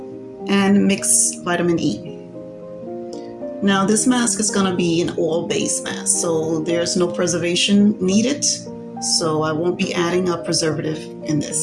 and mixed vitamin E. Now this mask is going to be an oil-based mask, so there's no preservation needed, so I won't be adding a preservative in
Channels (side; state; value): both; identical; correlation 1.00